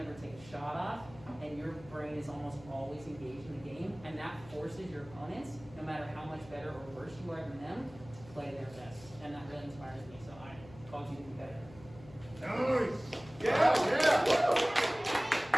take a shot off, and your brain is almost always engaged in the game, and that forces your opponents, no matter how much better or worse you are than them, to play their best. And that really inspires me, so I called you the competitor. Nice! Yeah!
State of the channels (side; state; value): left; noise; hum, 19 dB below the sound